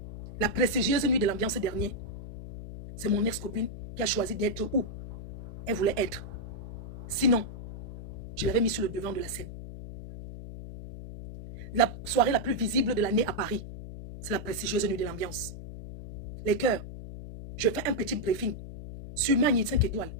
La prestigieuse nuit de l'ambiance dernier, c'est mon ex-copine qui a choisi d'être où elle voulait être. Sinon, je l'avais mis sur le devant de la scène. La soirée la plus visible de l'année à Paris, c'est la prestigieuse nuit de l'ambiance. Les cœurs, je fais un petit briefing sur Magny 5 étoiles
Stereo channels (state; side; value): noise; left; hum, 10 dB below the sound